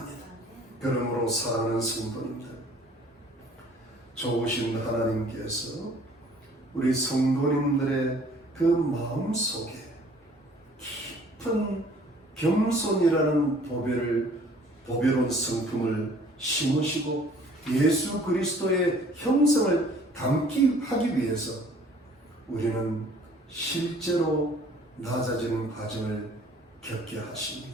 그러므로 사랑하는 성도님들, 좋으신 하나님께서 우리 성도님들의 그 마음 속에 깊은 겸손이라는 보배로운 성품을 심으시고 예수 그리스도의 형성을 담기 하기 위해서 우리는 실제로 낮아지는 과정을 겪게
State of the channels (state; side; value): normal; both; correlation 0.55